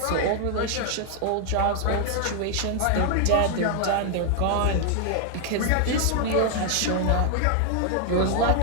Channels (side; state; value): both; different; correlation 0.00